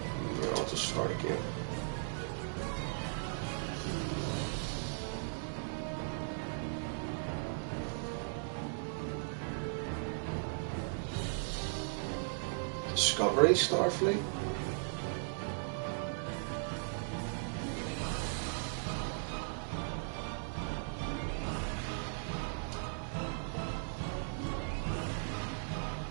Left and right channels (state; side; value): silent; left; digital silence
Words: Yeah, I'll just start again. Discovery Starfleet?